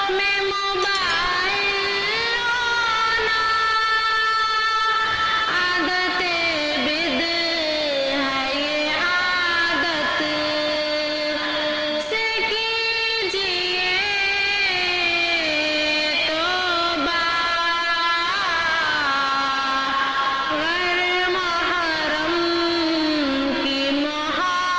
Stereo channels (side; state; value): both; identical; correlation 1.00